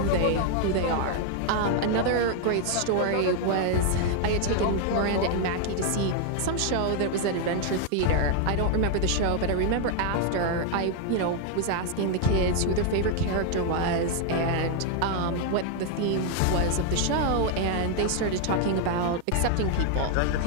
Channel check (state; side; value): different; both; correlation 0.00